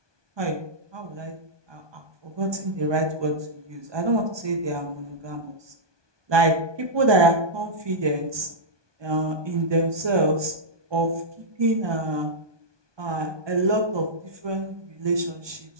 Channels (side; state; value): left; late; 1.2 ms